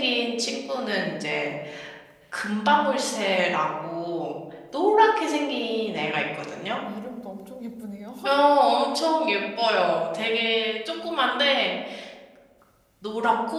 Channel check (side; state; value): both; identical; correlation 1.00